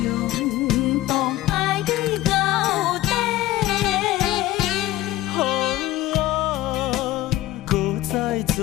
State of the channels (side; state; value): right; quieter; 15.2 dB